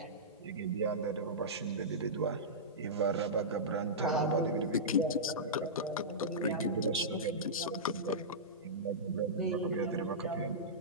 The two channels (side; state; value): both; normal; correlation -0.15